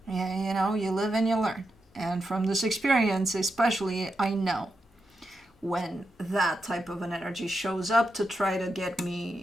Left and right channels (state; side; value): normal; both; correlation 0.86